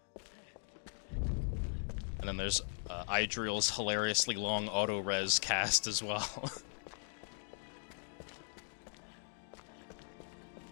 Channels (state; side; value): silent; right; digital silence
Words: And then there's Idril's hilariously long auto-res cast as well.